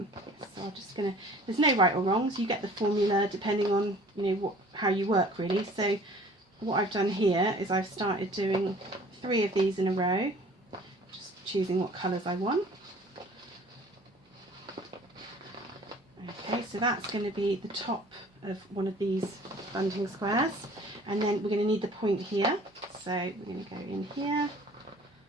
just gonna, there's no right or wrongs, you get the formula depending on, you know, how you work really. So what I've done here is I've started doing 3 of these in a row, just choosing what colours I want. Okay, so that's going to be the top of one of these bunting squares, and then we're going to need the point here, so we're going to go in here,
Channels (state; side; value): normal; both; correlation 0.49